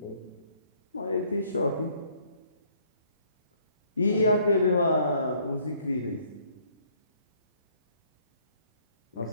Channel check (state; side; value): inverted; both; correlation -0.64